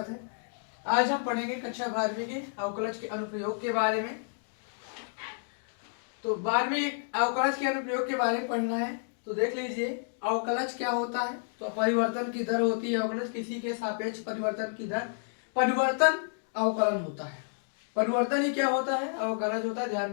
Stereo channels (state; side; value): silent; right; digital silence